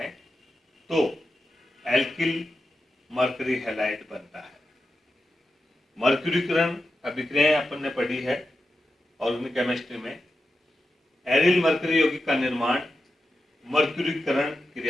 तो एल्किल मरकरी हैलाइड बनता है। मर्क्यूरीकरण अभिक्रियाएं अपन ने पढ़ी है ऑर्गेनिक केमिस्ट्री में। एरिल मरकरी यौगिक का निर्माण मर्क्यूरीकरण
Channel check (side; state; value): both; normal; correlation 0.90